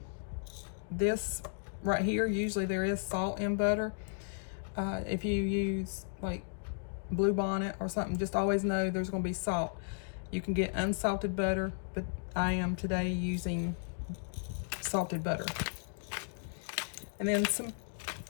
this right here, usually there is salt in butter. If you use like Blue Bonnet or something, just always know there's going to be salt. You can get unsalted butter, but I am today using salted butter. And then some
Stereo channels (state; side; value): silent; right; digital silence